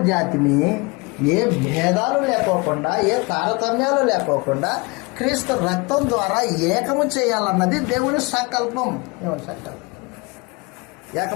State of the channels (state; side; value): quieter; right; 27.1 dB